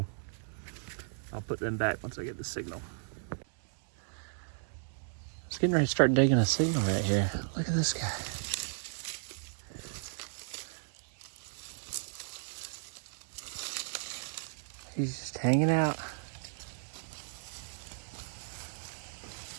I'll put them back once I get the signal. It's getting ready to start digging a signal right here. Look at this guy. He's just hanging out.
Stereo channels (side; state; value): left; silent; 55 dB below the other